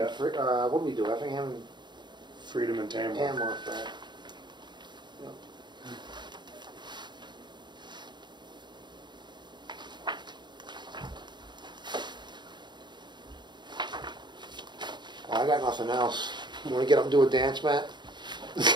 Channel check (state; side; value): late; left; 0.22 ms